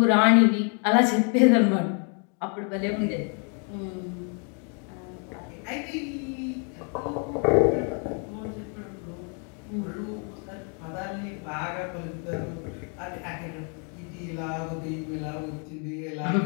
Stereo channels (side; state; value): right; quieter; 39.9 dB